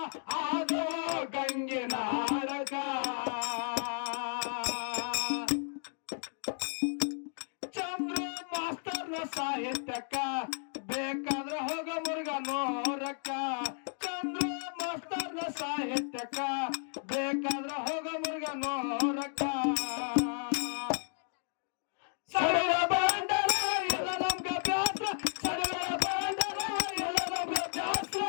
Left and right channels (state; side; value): silent; right; 56 dB below the other